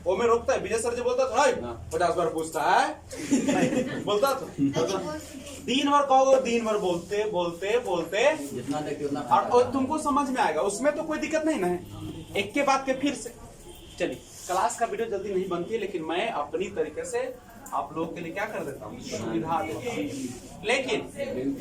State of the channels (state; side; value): identical; both; correlation 1.00